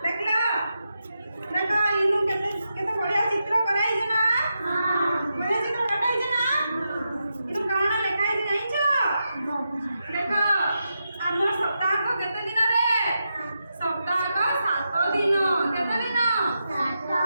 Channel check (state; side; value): inverted; both; correlation -0.87